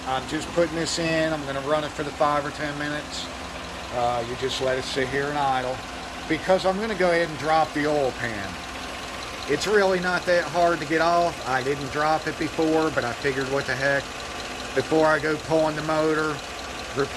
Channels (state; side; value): identical; both; correlation 1.00